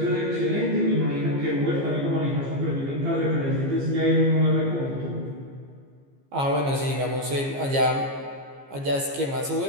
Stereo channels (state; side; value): late; left; 15 ms